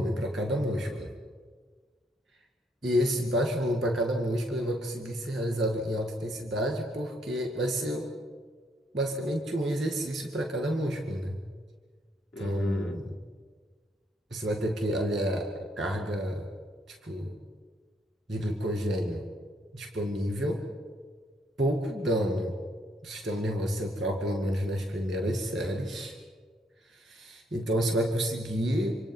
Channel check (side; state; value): both; normal; correlation 0.71